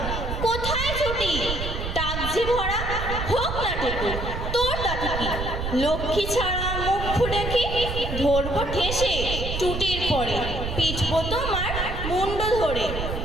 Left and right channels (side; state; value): right; noise; rumble, 4 dB below the sound